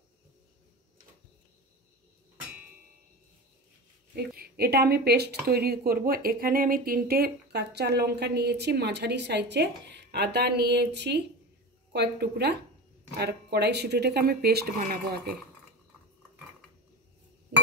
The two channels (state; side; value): normal; both; correlation 0.28